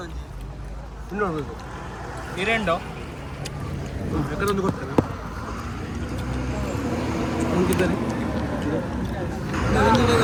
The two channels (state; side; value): identical; both; correlation 1.00